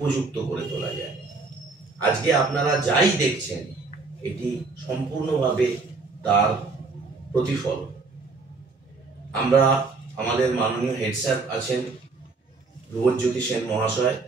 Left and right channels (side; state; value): left; quieter; 4.0 dB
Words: করে তোলা যায়। আজকে আপনারা যাই দেখছেন এটি সম্পূর্ণভাবে তার প্রতিফল। আমরা আমাদের মাননীয় হেড স্যার আছেন ধ্রুবজ্যোতি সেন মহাশয়,